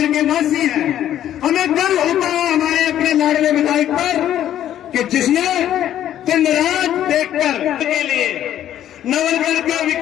के वासी हैं। हमें गर्व होता है हमारे अपने लाडले विधायक पर कि जिसने दिन रात देखकर के लिए, नवलगढ़ के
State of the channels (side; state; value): right; quieter; 11.4 dB